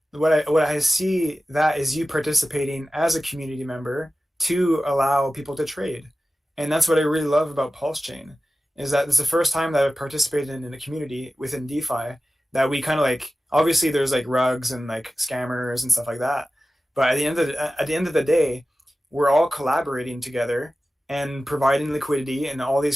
What I see that is you participating as a community member to allow people to trade. And that's what I really love about Pulsechain, is that it's the first time that I've participated in a community within DeFi that we kind of like, obviously there's like rugs and like scammers and stuff like that. But at the end of the day, we're all collaborating together and providing liquidity in all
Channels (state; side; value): normal; both; correlation 0.95